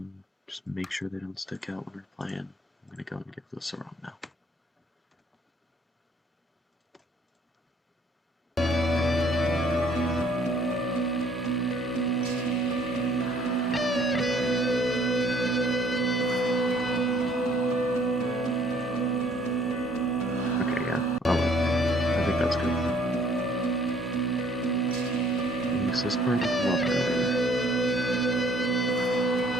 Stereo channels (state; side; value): normal; both; correlation 0.60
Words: just make sure they don't stick out when we're playing. I'm going to go and give this a run now. Okay, yeah, I think that's good. Makes this part look a lot better.